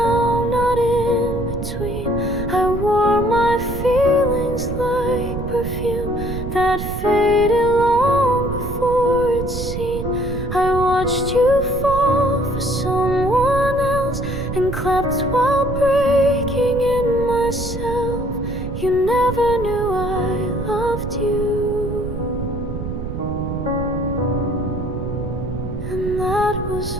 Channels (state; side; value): noise; right; rumble, 6 dB below the sound